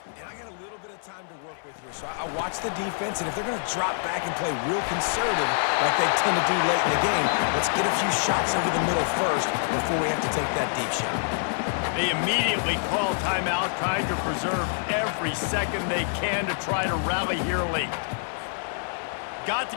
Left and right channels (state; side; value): silent; right; 61 dB below the other